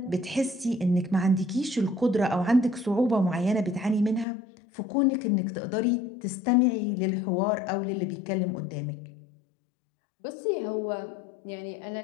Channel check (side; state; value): right; drops out; at 4.2 s